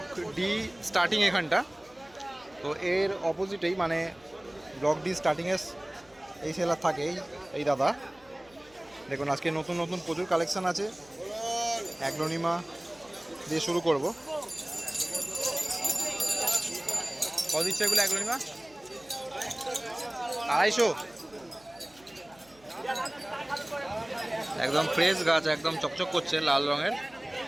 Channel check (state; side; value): noise; left; hum, 28 dB below the sound